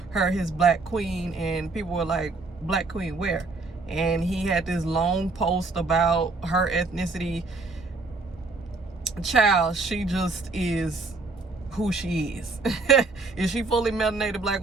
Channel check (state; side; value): quieter; left; 3.6 dB